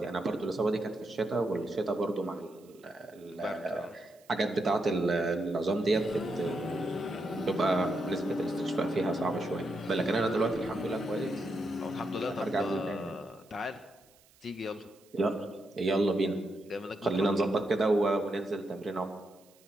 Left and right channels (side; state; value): right; noise; hiss, 29 dB below the sound